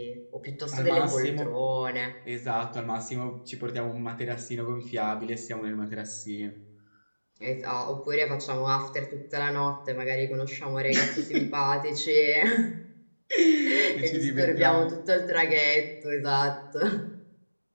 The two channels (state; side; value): inverted; both; correlation -1.00